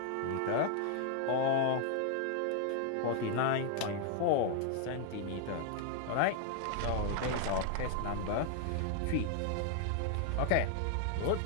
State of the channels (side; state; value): both; different; correlation 0.00